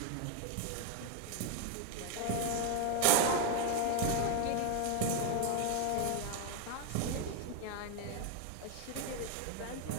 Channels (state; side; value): different; both; correlation 0.01